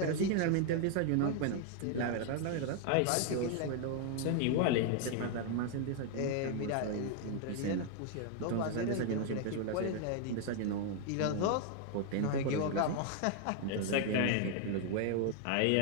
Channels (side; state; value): both; different; correlation 0.00